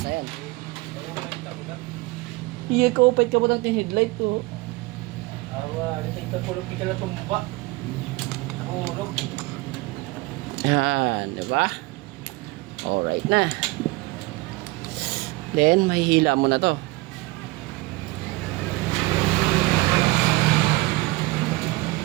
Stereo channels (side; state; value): left; quieter; 22.2 dB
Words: yan. Iya ka, upay ka mo ng headlight ko. Awa, kita pulong kita lang tumba. Pulong. Yan, diba? Alright na. Then, mahihila mo na to.